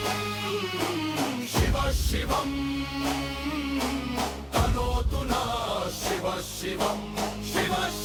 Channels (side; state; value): both; identical; correlation 1.00